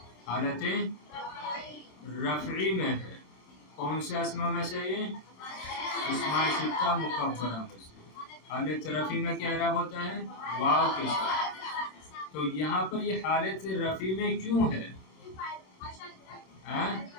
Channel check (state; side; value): late; right; 27 ms